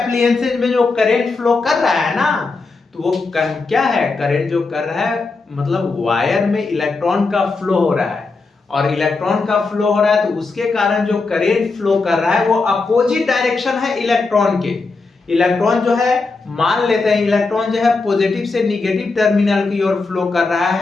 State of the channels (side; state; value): right; quieter; 3.9 dB